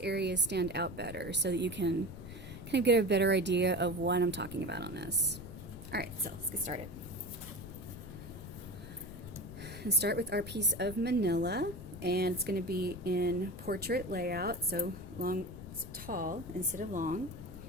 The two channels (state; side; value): noise; left; rumble, 12 dB below the sound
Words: areas stand out better so that you can kind of get a better idea of what I'm talking about on this. Alright, so let's get started. And start with our piece of manila, and it's going to be in portrait layout, so tall instead of long.